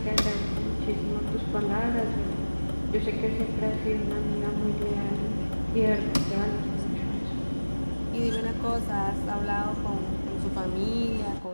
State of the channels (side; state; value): both; inverted; correlation -1.00